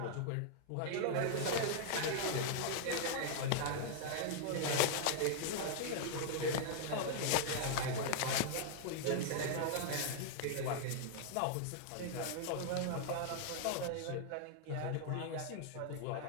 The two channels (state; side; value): different; both; correlation -0.01